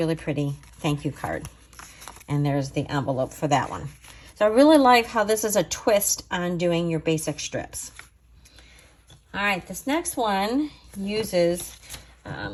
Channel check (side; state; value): both; identical; correlation 1.00